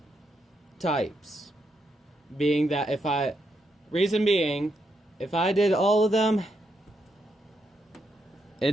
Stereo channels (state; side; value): normal; both; correlation 0.80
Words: types. Being that if I did all of them,